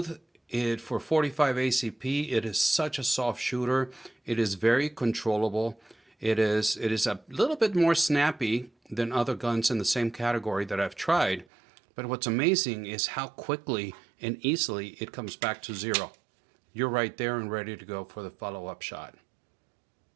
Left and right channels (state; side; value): drops out; left; at 11.5 s